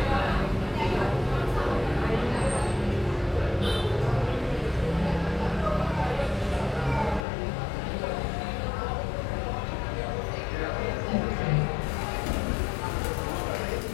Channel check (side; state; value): right; drops out; at 7.2 s